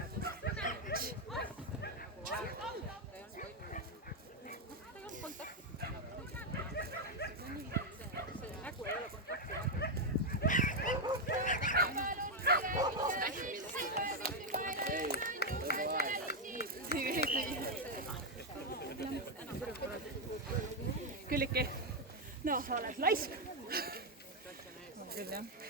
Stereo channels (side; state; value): both; normal; correlation 0.02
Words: Külliki, no sa oled laisk. Küll jah.